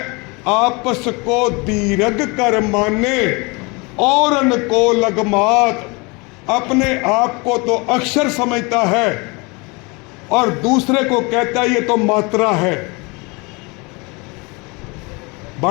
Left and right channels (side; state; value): right; quieter; 27.9 dB